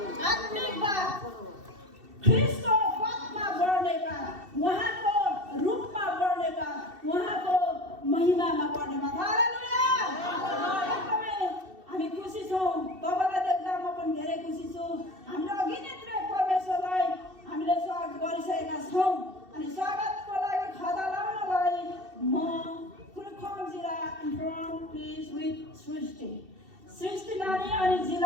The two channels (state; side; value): late; left; 2.7 ms